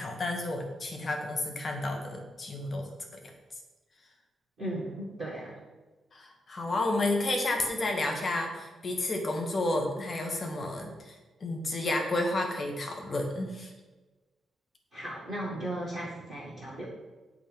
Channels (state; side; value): normal; both; correlation 0.83